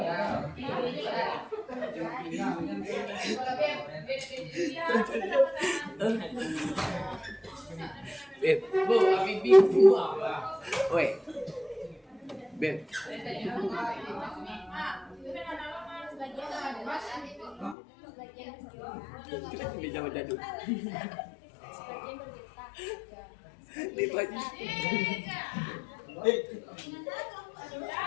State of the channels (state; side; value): drops out; right; at 17.8 s